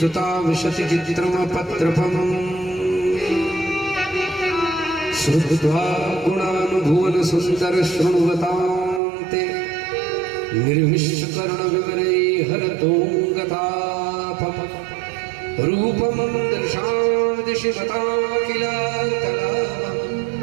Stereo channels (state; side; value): drops out; left; at 9.0 s